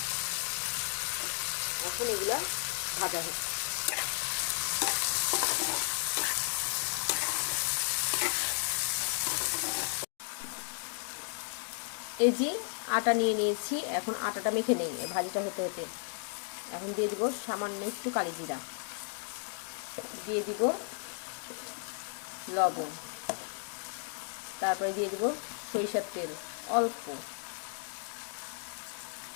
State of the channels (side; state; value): right; silent; 55 dB below the other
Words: এখন এগুলা ভাজা হচ্ছে। এই যে আটা নিয়ে নিয়েছি, এখন আটাটা মেখে নিই ভাজিটা হতে হতে। এখন দিয়ে দিব সামান্য একটু কালি জিরা, দিয়ে দিব লবণ, তারপরে দিয়ে দিব সরিষার তেল অল্প,